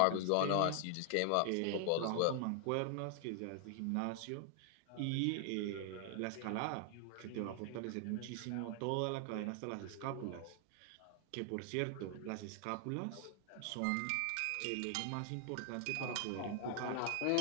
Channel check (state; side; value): different; both; correlation 0.00